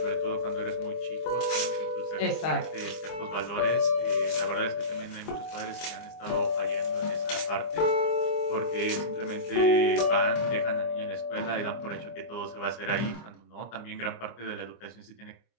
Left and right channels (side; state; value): right; late; 25 ms